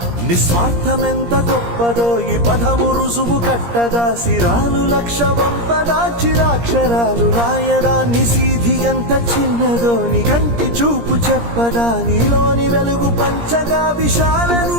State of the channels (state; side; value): late; left; 17 ms